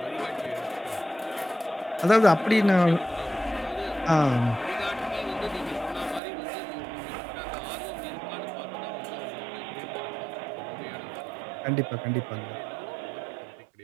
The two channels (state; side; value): drops out; left; at 6.2 s